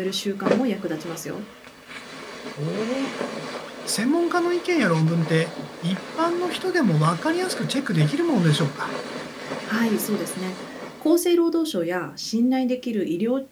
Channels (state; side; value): identical; both; correlation 1.00